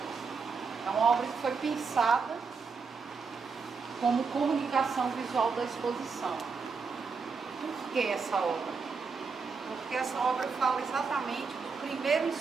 É uma obra que foi pensada como comunicação visual da exposição. Por que essa obra? Porque essa obra fala exatamente do primeiro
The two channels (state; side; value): quieter; left; 5.1 dB